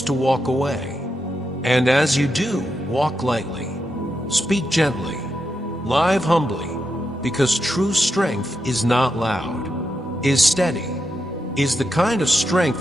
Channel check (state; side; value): normal; both; correlation 0.85